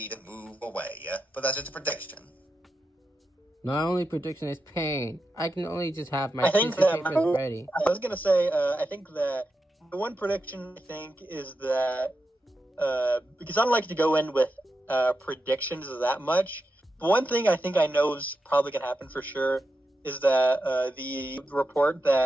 move away, but that's just a prediction. my only prediction is pain. I can only just have my I think tissue that papers ready. I was gonna say, I think that the one prediction I think is that because I don't like to go in with predictions that much. But one thing I think I know is probably gonna happen for sure is that the report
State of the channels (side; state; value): both; normal; correlation 0.88